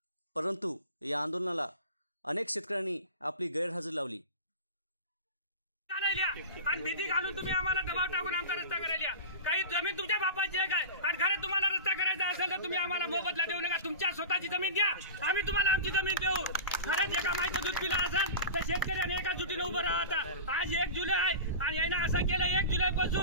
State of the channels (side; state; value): both; inverted; correlation -0.30